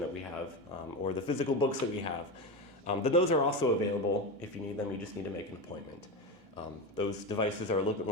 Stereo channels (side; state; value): left; late; 1.8 ms